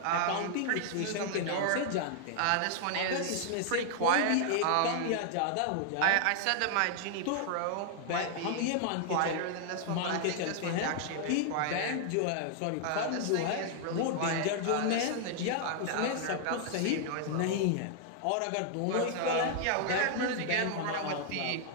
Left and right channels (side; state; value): both; different; correlation -0.01